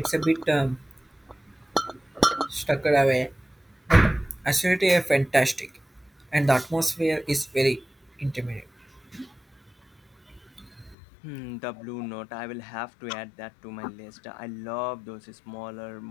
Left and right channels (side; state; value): right; drops out; at 11.0 s